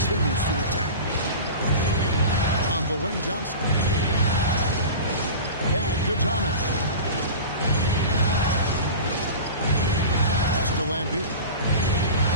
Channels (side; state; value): both; inverted; correlation -0.32